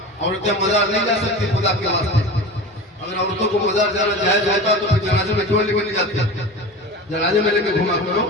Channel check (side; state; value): both; normal; correlation 0.32